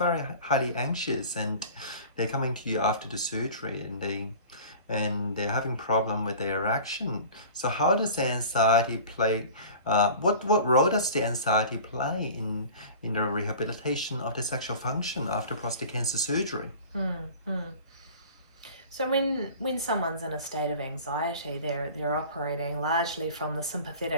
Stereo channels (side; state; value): both; inverted; correlation -0.41